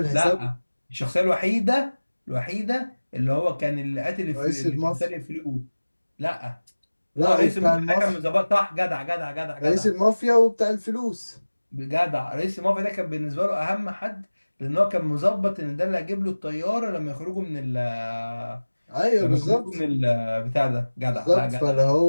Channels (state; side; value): inverted; both; correlation -1.00